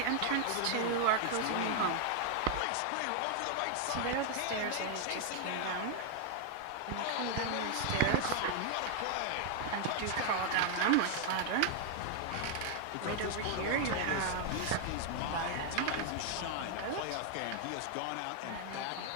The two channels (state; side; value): different; both; correlation 0.00